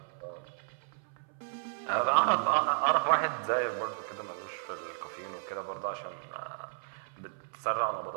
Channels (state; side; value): silent; left; 56 dB below the other